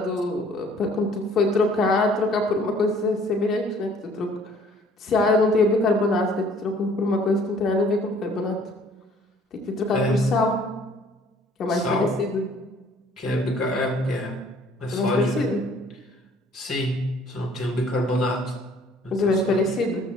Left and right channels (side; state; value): both; normal; correlation 0.57